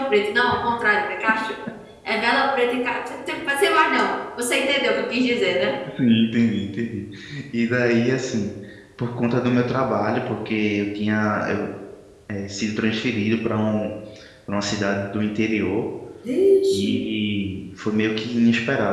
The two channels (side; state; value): both; identical; correlation 1.00